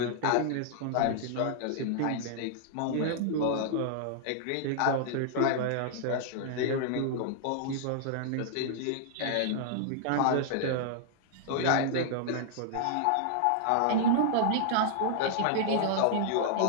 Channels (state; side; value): different; both; correlation -0.01